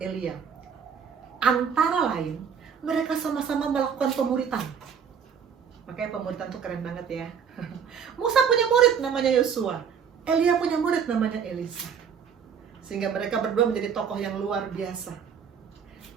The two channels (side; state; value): left; quieter; 7.1 dB